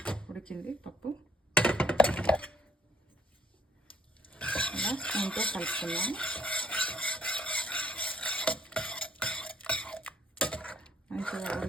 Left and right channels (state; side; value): normal; both; correlation 0.64